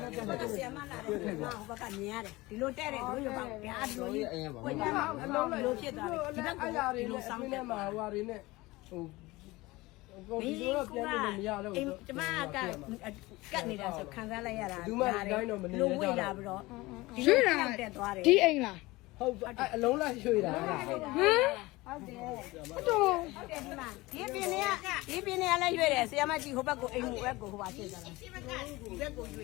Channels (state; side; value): quieter; right; 20.8 dB